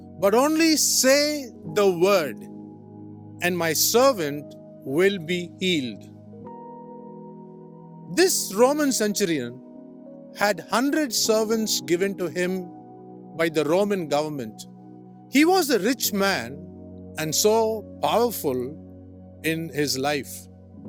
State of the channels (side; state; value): both; identical; correlation 1.00